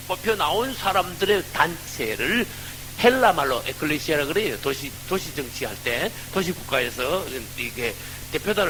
뽑혀 나온 사람들의 단체를 헬라 말로 에클레시아라 그래요. 도시 정치할 때, 도시 국가에서 이게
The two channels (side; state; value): both; identical; correlation 1.00